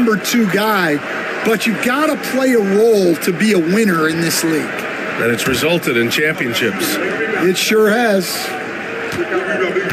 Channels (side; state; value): both; identical; correlation 1.00